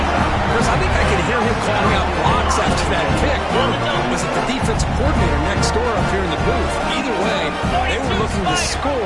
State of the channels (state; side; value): identical; both; correlation 1.00